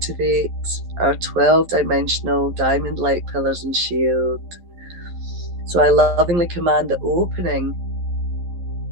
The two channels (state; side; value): late; left; 11 ms